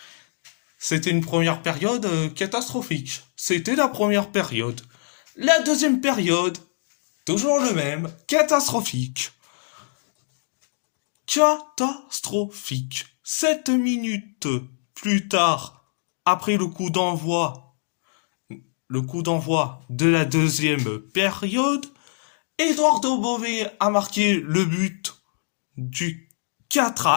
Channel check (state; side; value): silent; right; digital silence